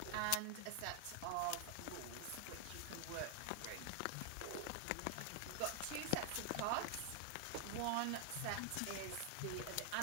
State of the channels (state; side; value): different; both; correlation 0.00